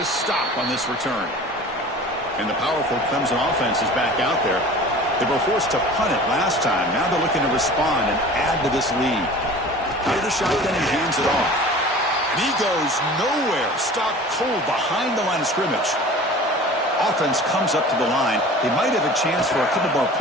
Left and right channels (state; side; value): normal; both; correlation 0.41